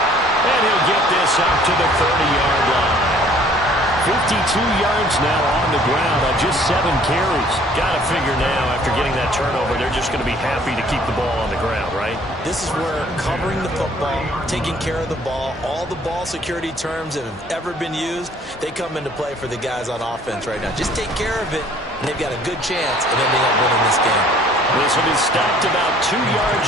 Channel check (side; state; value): both; normal; correlation 0.56